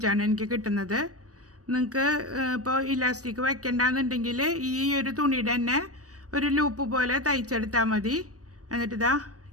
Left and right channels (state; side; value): late; left; 0.66 ms